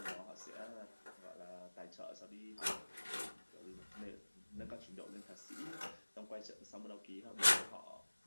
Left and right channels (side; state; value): both; inverted; correlation -1.00